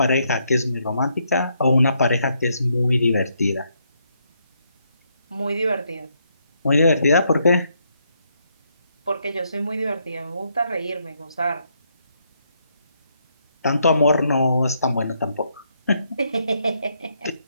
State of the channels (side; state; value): both; inverted; correlation -0.75